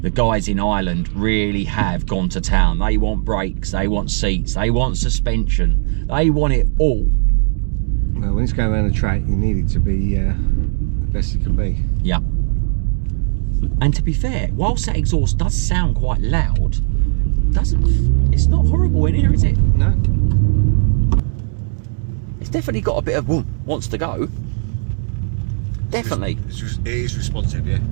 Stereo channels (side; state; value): left; silent; 62 dB below the other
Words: guys in Ireland really have gone to town. They want brakes, they want seats, they want suspension, they want it all. Well, when it's going around the track, you need it to be the best it can be. Yeah. And to be fair, whilst that exhaust does sound quite loud, it's not horrible in here, is it? No. It's definitely got a bit of wants to go. definitely. It is responsive, yeah.